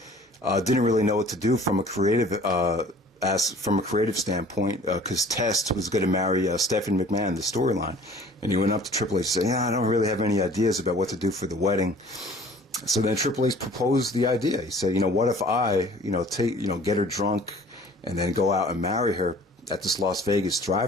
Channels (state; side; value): normal; both; correlation 0.50